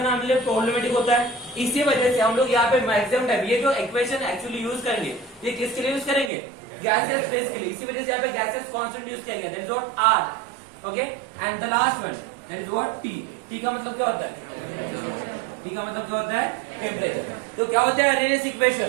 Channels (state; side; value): drops out; left; at 6.3 s